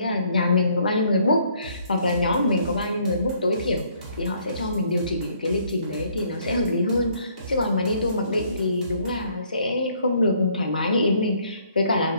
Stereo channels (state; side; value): inverted; both; correlation -0.65